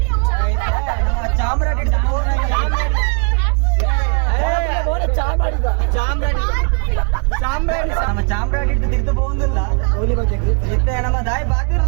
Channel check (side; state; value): left; quieter; 38.9 dB